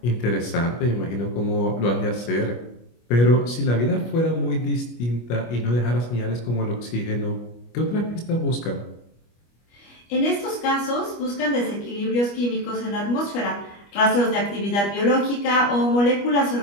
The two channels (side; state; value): right; late; 25 ms